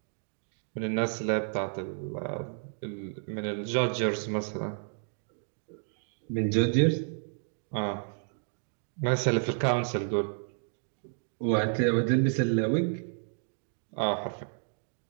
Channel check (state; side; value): silent; left; digital silence